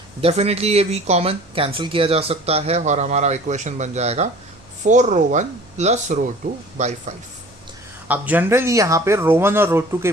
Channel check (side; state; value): right; noise; hum, 28 dB below the sound